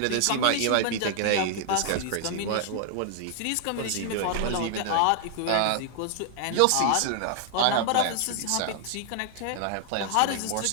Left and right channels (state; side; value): different; both; correlation 0.00